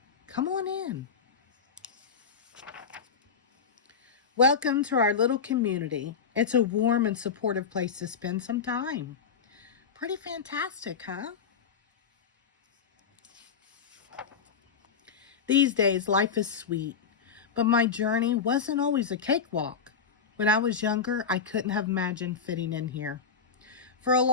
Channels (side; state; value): right; quieter; 6.1 dB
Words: Come on in. Welcome to our little community. It's a warm and supportive place to spend some time. Pretty fantastic, huh? These days, life is sweet, but my journey wasn't always a cakewalk. When I was younger, I couldn't have imagined fitting in here. For a